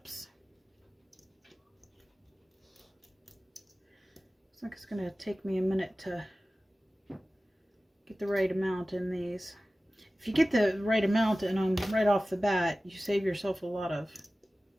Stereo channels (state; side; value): normal; both; correlation 0.96